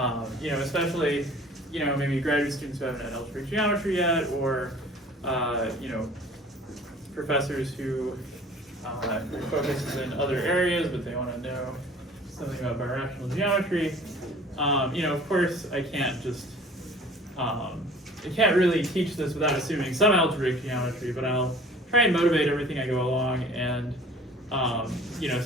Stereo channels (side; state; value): both; normal; correlation 0.48